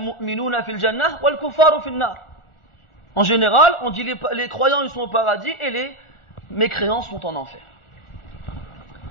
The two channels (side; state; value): right; late; 1.4 ms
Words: fil jannah wal kuffaru fil nar. En général, on dit les croyants ils sont au paradis et les mécréants sont en enfer.